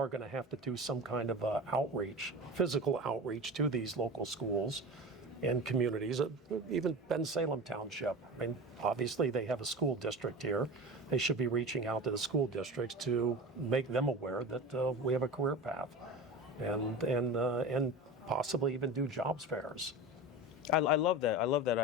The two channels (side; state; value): both; normal; correlation 0.30